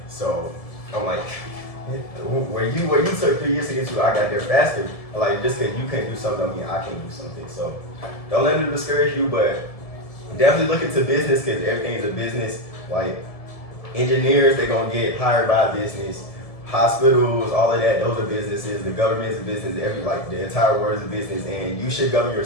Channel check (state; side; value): late; right; 1.7 ms